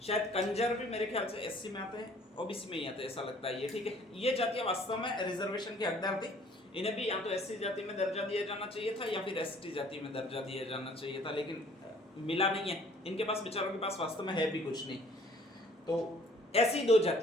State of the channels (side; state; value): both; normal; correlation 0.56